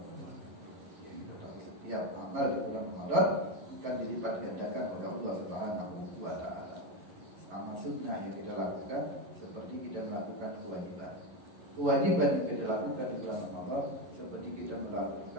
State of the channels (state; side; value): late; left; 10 ms